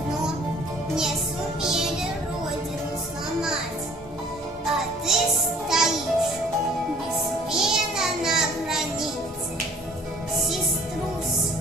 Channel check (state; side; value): normal; both; correlation 0.54